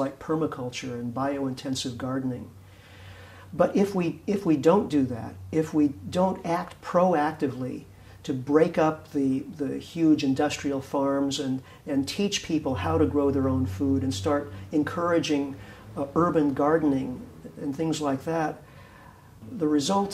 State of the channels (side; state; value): both; identical; correlation 1.00